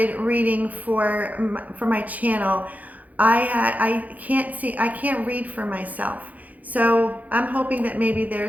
reading for my channel, I can't read for myself. So I'm hoping that maybe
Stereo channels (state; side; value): late; left; 0.077 ms